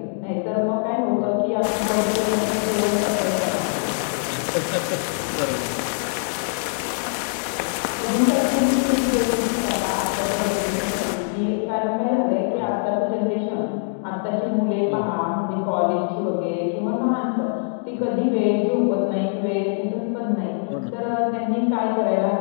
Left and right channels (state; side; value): silent; right; digital silence